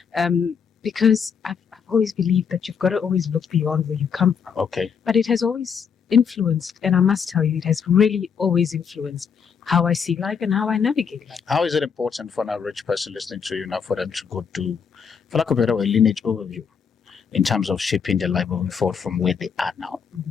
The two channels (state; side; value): quieter; right; 6.7 dB